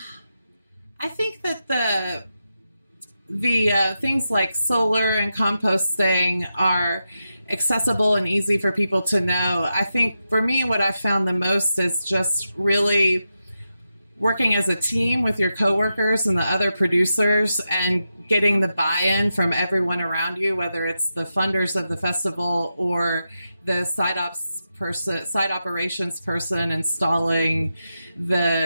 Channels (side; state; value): both; inverted; correlation -0.89